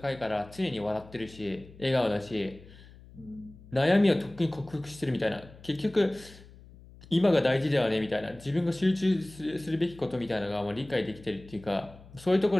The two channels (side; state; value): left; noise; hum, 21 dB below the sound